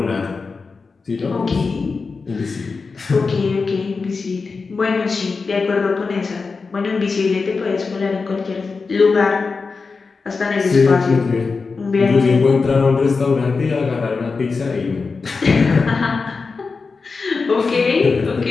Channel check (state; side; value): quieter; right; 4.5 dB